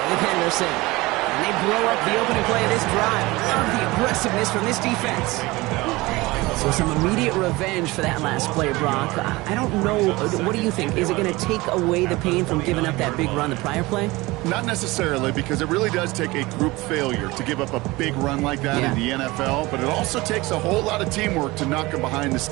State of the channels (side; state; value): left; quieter; 21.4 dB